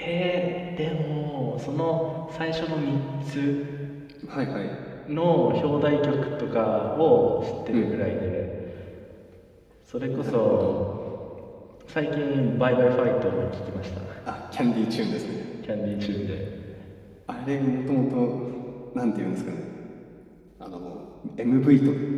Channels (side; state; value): both; identical; correlation 1.00